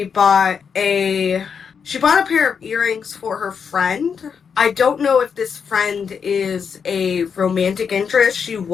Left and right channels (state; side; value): quieter; right; 6.5 dB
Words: bought a pair of earrings for her friend. I don't know if this friend is a romantic interest. She